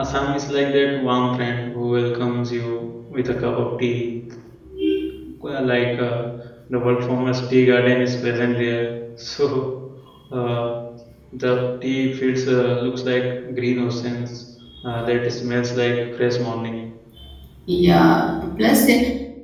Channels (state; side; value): identical; both; correlation 1.00